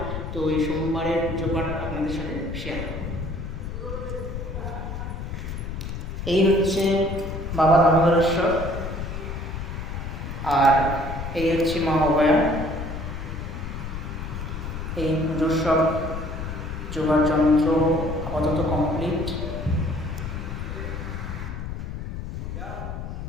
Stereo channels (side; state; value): left; noise; rumble, 6 dB below the sound